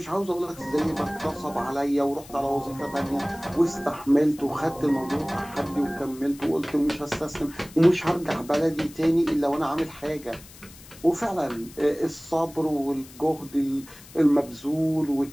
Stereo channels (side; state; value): left; noise; hiss, 20 dB below the sound